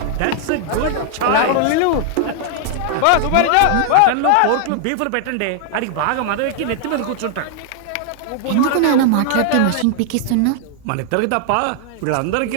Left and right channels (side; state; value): both; different; correlation -0.01